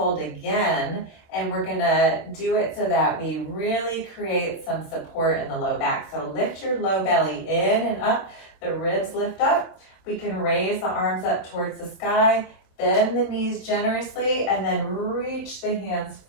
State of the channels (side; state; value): right; late; 26 ms